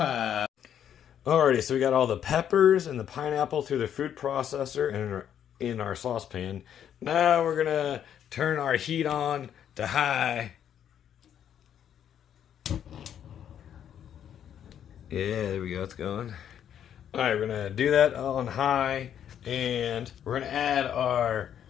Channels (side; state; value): right; quieter; 9.5 dB